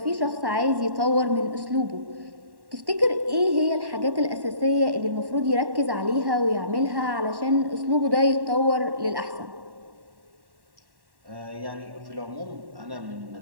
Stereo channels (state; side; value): late; left; 1.1 ms